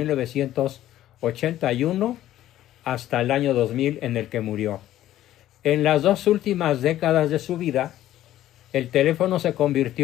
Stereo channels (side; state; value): right; quieter; 13.4 dB